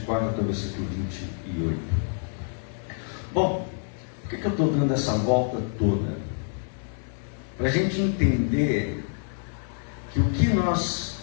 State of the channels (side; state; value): right; silent; 60 dB below the other